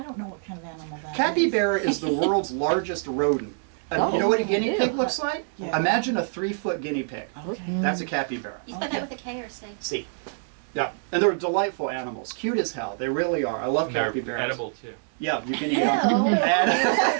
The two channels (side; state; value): left; silent; digital silence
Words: don't know what kind of animal that capybara is the world's largest rodent. And you know what a guinea pig looks like? Yeah. Imagine a 3-foot guinea pig. Okay. That's a capybara. You spell that with a K or a C? C. Yeah, and they're delightful animals. Cute as hell. They really are. I love capybaras. They're edible too. Yeah, you can eat them.